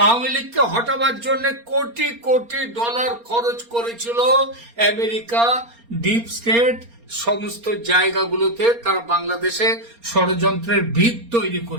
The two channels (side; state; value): left; late; 4.3 ms